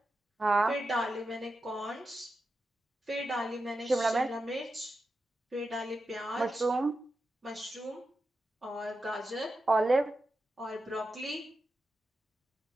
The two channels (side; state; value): both; normal; correlation 0.89